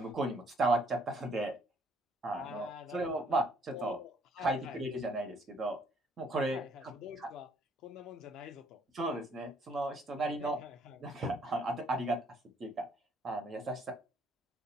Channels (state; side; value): normal; both; correlation 0.65